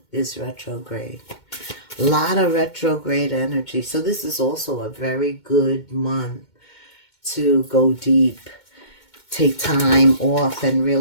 is retrograde. A lot of retrograde energy. So this is also a very good month to go deep. Take time off and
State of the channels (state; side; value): late; right; 2.2 ms